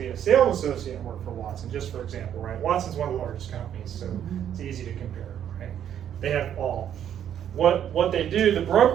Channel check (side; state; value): left; quieter; 9.8 dB